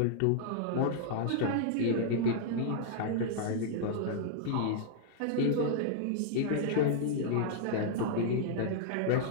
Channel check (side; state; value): both; different; correlation -0.01